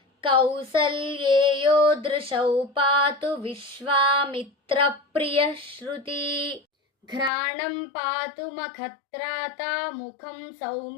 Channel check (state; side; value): drops out; right; at 7.3 s